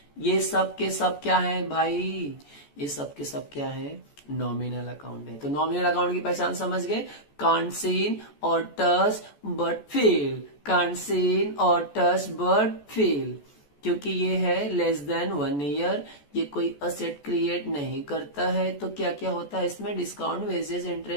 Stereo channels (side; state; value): right; late; 14 ms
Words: ये सब के सब क्या है भाई? ये सब के सब क्या है? नॉमिनल अकाउंट है। तो नॉमिनल अकाउंट की पहचान समझ गए? कांट सीन और touch but feel, can't seen और टच बट फील, क्योंकि ये है लेस देन 1 ईयर, ये कोई असेट क्रिएट नहीं करता है। तो क्या क्या होता है इसमें? Discount, wages,